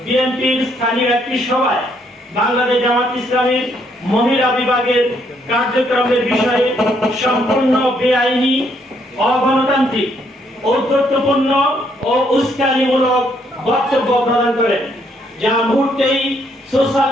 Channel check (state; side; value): normal; both; correlation 0.71